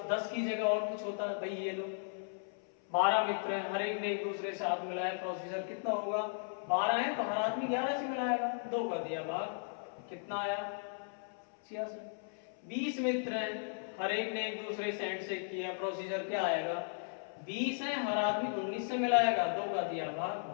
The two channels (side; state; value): right; silent; 54 dB below the other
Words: 10 की जगह और कुछ होता, भाई ये लो 12 मित्र हैं, हर एक ने एक दूसरे से हाथ मिलाया, प्रोसीजर कितना होगा, 12 है तो हर आदमी 11 से मिलाएगा, 2 का दिया भाग, कितना आया 66। 20 मित्र हैं, हर एक ने एक दूसरे से हैंडशेक किया, प्रोसीजर क्या आएगा, 20 है हर आदमी 19 से मिलाएगा, 2 का दिया भाग